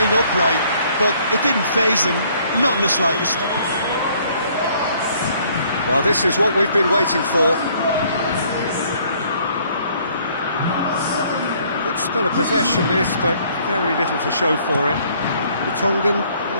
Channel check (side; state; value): both; inverted; correlation -0.62